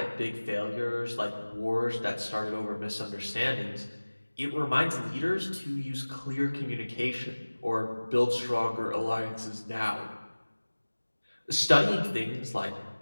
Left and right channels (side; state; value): both; inverted; correlation -1.00